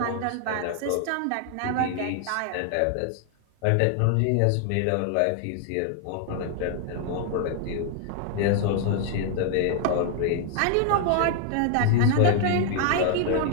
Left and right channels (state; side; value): different; both; correlation 0.00